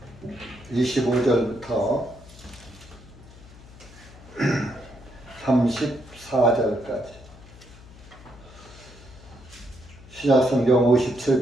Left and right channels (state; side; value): noise; left; hum, 20 dB below the sound